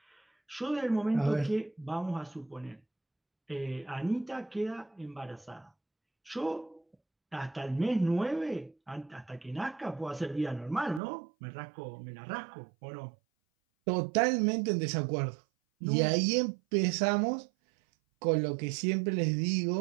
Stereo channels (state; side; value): drops out; left; at 11.0 s